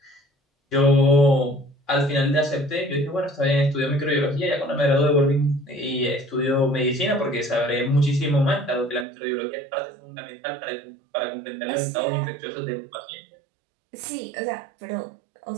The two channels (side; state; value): left; drops out; at 9.1 s